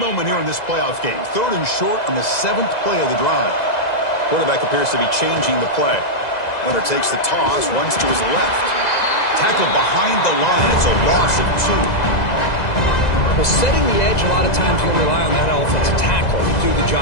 here in this playoff game. 3rd and short on the 7th play of the drive. Quarterback appears to be changing the play. Leonard takes the toss, runs to his left. Tackled behind the line. It's a loss of 2. Well, setting the edge, a lot of times you'll rely on that offensive tackle to do the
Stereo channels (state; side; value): late; right; 2.0 ms